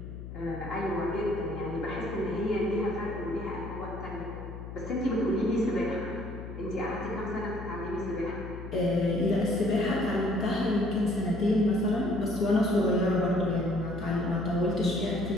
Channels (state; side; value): noise; left; hum, 10 dB below the sound